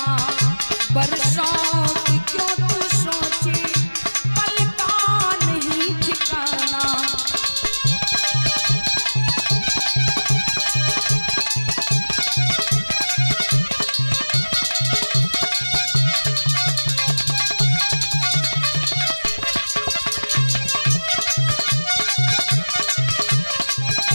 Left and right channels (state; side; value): inverted; both; correlation -1.00